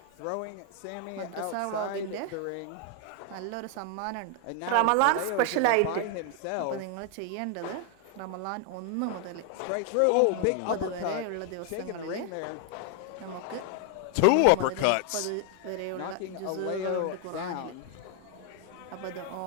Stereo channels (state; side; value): different; both; correlation 0.01